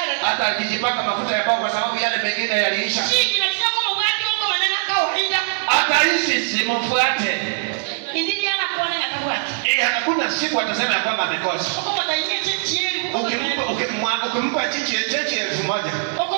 hata akijipaka mafuta ya pao kwa sababu yale mengine yaliisha. Chini na tinya kwa mwati wako manana kawaida. Hata hisi simfuate. Indili ana kuona atabwati. Hakuna siku atasema ya kwamba amekosa. Uko mtainye chechieli. Ukimpa chinchi 1,000.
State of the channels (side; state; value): left; silent; digital silence